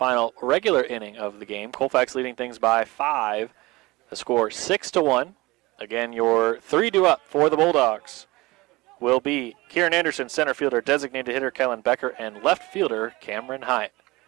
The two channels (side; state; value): left; quieter; 21.5 dB